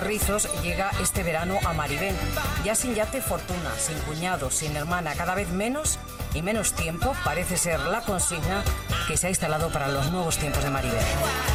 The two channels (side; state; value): both; identical; correlation 1.00